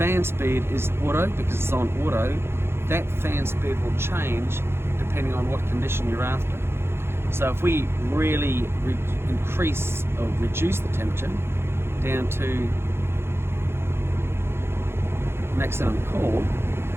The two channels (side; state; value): left; late; 0.12 ms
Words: speed is auto because it's on auto. That fan speed will change depending on what condition you're after. So if we really increase or reduce the temperature down to maximum cool,